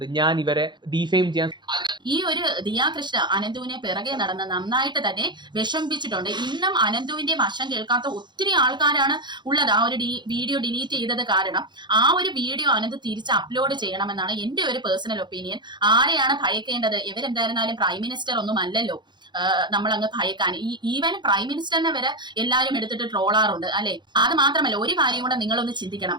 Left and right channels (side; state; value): left; late; 0.22 ms